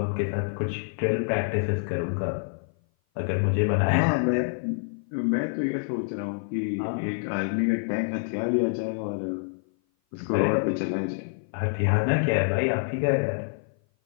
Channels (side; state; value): right; silent; 56 dB below the other